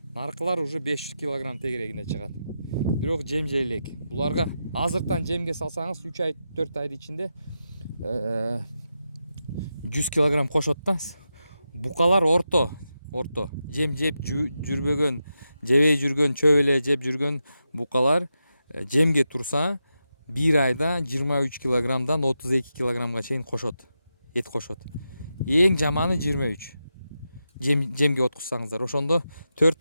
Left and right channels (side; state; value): both; inverted; correlation -0.88